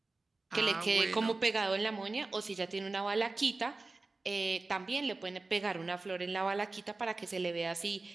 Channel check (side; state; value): left; quieter; 3.4 dB